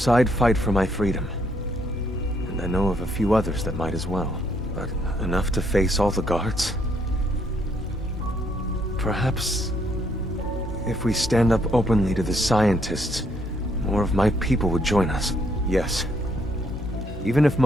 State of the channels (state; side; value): normal; both; correlation 0.71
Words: I'd fight for my freedom. And I know of a few others that might as well. But enough to face all the guards? Perhaps if we stand up openly to the scientists, more of my people would join us. Yes. Even if